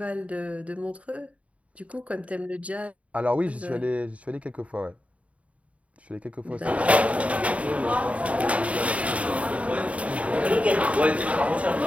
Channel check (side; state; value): left; late; 0.066 ms